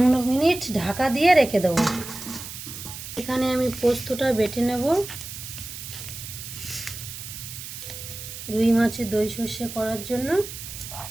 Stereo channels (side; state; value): right; noise; hiss, 10 dB below the sound